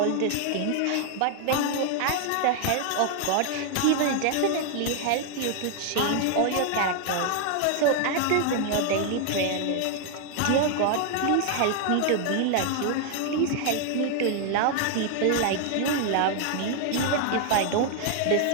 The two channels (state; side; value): different; both; correlation 0.00